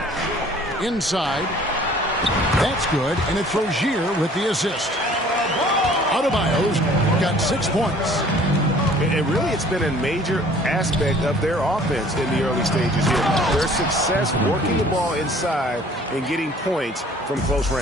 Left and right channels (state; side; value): normal; both; correlation 0.53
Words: Inside. That's good, and it's Rozier with the assist. Adebayo's got 6 points. And really, it's been a major aspect of their offense in the early stages here. Their success working the ball inside and getting points from close